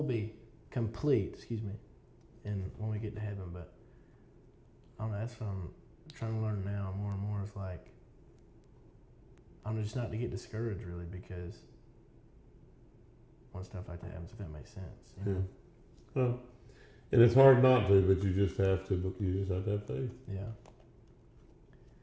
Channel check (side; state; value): both; identical; correlation 1.00